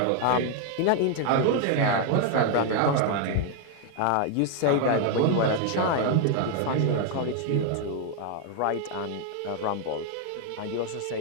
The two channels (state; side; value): different; both; correlation 0.00